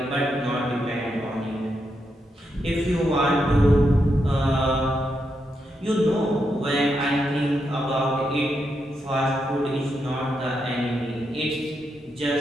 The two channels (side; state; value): both; normal; correlation 0.83